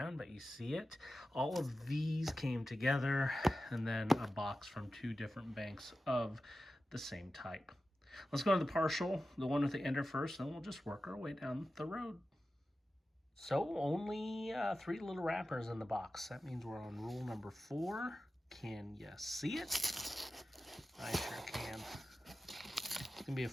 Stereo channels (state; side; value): normal; both; correlation 0.93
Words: but you see it. All of these came together, and then a box from two different banks of the same type. Let's go to the partial, the one with the ender first, and then we'll just work our way down the road. So only 3 little wrappers in the box. That means we're on rule number 4. Can you see it? I sure can. It's gonna be a